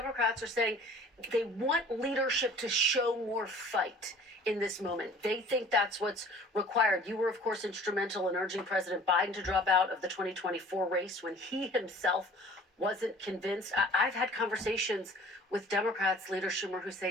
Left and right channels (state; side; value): normal; both; correlation 0.48